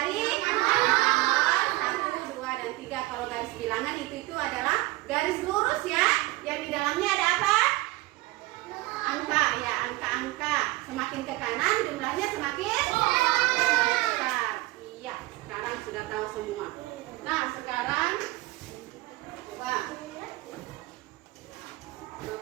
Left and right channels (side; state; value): left; quieter; 20.5 dB